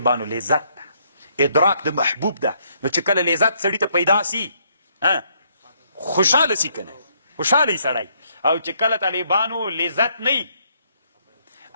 لذت ده، ادراک د محبوب ده. نو چې کله لذت سړي ته پیدا سي، خوشحاله سي که نه، خوشحاله یي سړی. او چې کله طالبانو لذت نه وي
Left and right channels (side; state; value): both; inverted; correlation -0.71